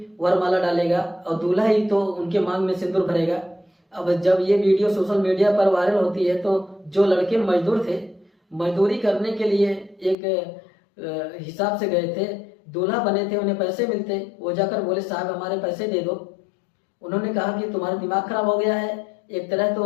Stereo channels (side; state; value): right; drops out; at 10.2 s